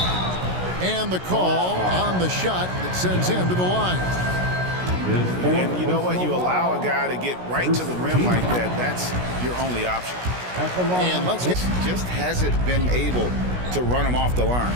And the call on the shot that sends him to the line. And you know what? You allow a guy to get right to the rim like that. That's your only option. And let's get... Just hasn't been able to run him off the line.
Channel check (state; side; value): late; left; 16 ms